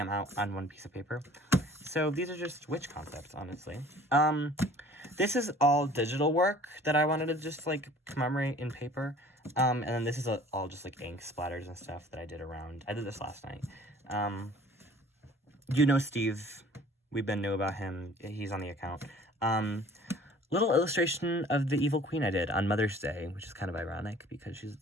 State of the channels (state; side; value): normal; both; correlation 0.50